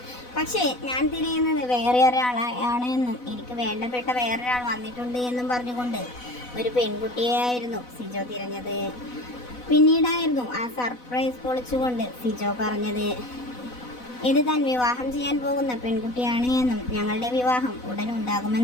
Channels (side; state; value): right; late; 4.1 ms